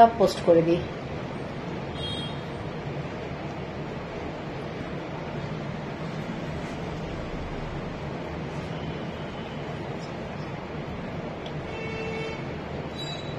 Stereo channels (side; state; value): both; identical; correlation 1.00